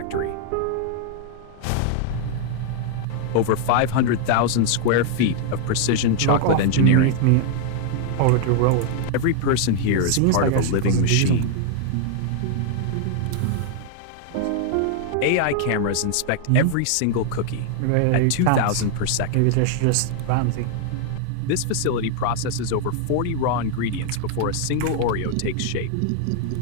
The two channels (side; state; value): both; different; correlation 0.00